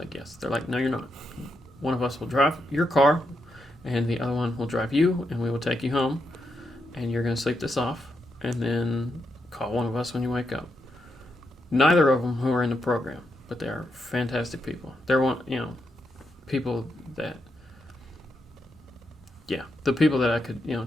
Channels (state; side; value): normal; both; correlation 0.82